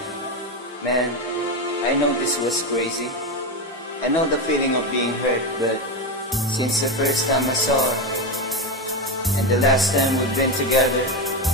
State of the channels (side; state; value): both; normal; correlation 0.14